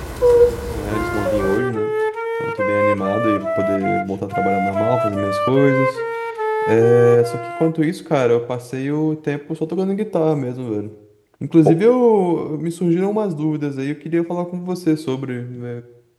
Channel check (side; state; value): both; identical; correlation 1.00